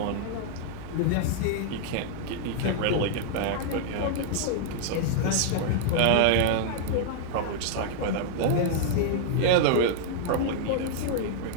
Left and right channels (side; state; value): both; different; correlation -0.01